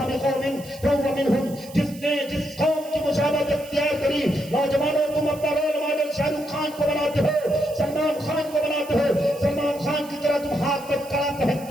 بقوم فہو منہم، جس نے جس قوم کی مشابہت اختیار کری۔ نوجوانوں تم اپنا رول ماڈل شاہ رخ خان کو بناتے ہو، سلمان خان کو بناتے ہو، سلمان خان کی طرح تم ہاتھ میں کڑا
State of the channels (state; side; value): noise; right; hiss, 19 dB below the sound